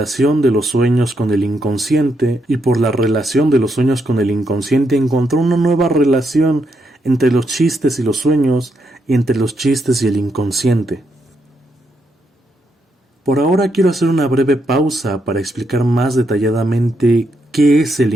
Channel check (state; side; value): normal; both; correlation 0.80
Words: de los sueños con el inconsciente, y por la relación de los sueños con el inconsciente encontró una nueva relación entre los chistes y los sueños, y entre los chistes y el inconsciente. Por ahora quiero hacer una breve pausa para explicar más detalladamente qué es el